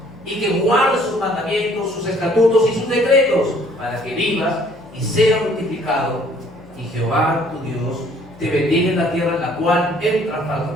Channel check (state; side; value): noise; left; hum, 24 dB below the sound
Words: y que guardes sus mandamientos, sus estatutos y sus decretos, para que vivas y seas multiplicado, y Jehová tu Dios te bendiga en la tierra en la cual entras para